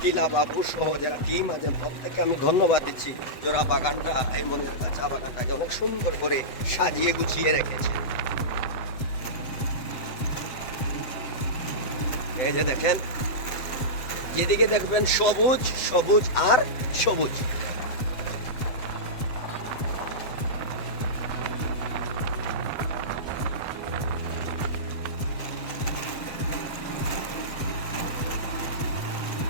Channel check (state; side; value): late; right; 7.9 ms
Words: টিলা বাবু সহ যারা টিম আছেন, প্রত্যেককে আমি ধন্যবাদ দিচ্ছি, যারা বাগানটা, এই মনিয়ারখাল চা বাগানটাকে অনেক সুন্দর করে সাজিয়ে গুছিয়ে রেখেছে। এই যে দেখেন, যেদিকে দেখবেন সবুজ সবুজ আর সবুজ।